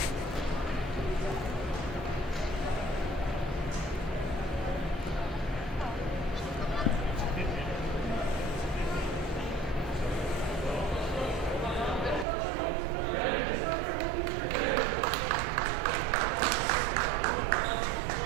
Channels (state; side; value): drops out; left; at 12.2 s